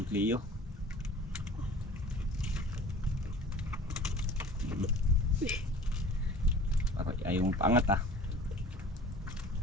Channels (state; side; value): normal; both; correlation 0.44